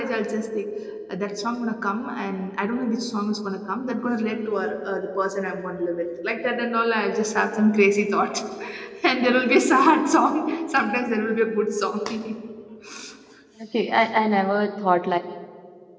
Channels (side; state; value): both; identical; correlation 1.00